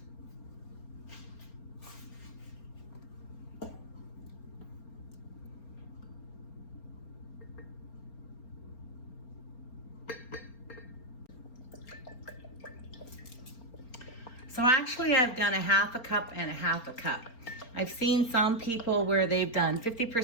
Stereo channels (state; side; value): late; right; 4.3 ms